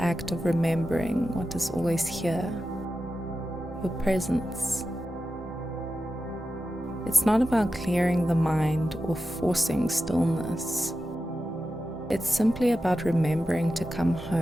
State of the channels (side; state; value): both; normal; correlation 0.91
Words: act of remembering what is always here, your presence. It's not about clearing the mind or forcing stillness. It's simply about remembering to come